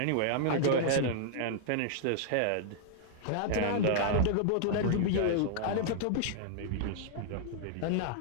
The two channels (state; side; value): different; both; correlation -0.01